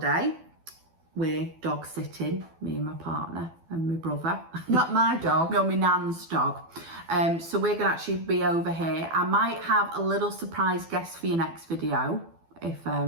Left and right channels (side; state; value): left; late; 12 ms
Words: We're dog sitting, me and my partner and my brother. Not my dog. No, my nan's dog. So we're going to actually be over here. I might have a little surprise guest for your next video if